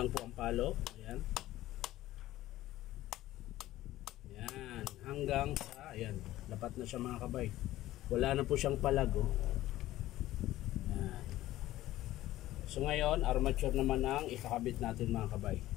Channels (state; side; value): quieter; right; 15.3 dB